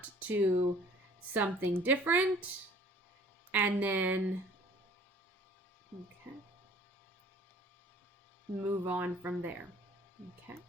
to something different, and then, okay, move on from there. Okay,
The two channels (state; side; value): normal; both; correlation 0.52